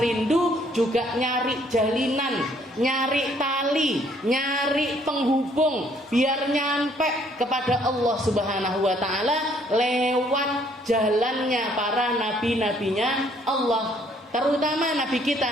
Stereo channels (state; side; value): normal; both; correlation 0.64